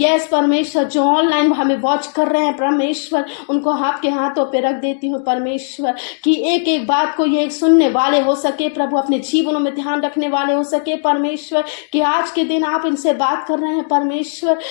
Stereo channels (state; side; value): silent; right; digital silence